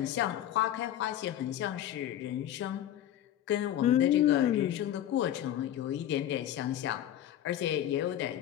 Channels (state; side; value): quieter; right; 11.7 dB